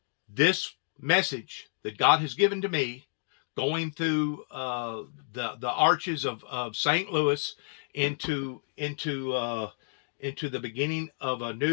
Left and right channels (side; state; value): right; silent; digital silence